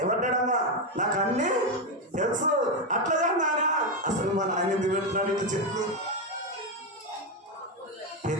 ఏమంటాడమ్మా? నాకు అన్ని తెలుసు. అట్లాగా నానా అసలు మన ఆయన ఎందుకు పెడుతున్నాడు? ఇట్లా చెప్పు.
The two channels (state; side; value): normal; both; correlation 0.08